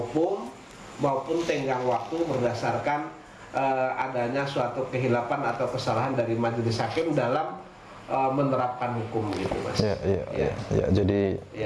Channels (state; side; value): identical; both; correlation 1.00